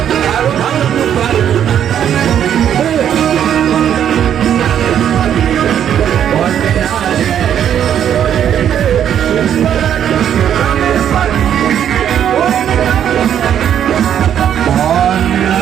আরো ভালো লুকাই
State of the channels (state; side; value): quieter; left; 9.6 dB